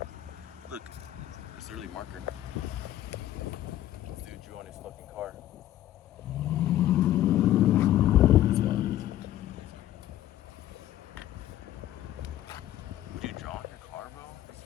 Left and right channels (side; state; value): right; quieter; 13.2 dB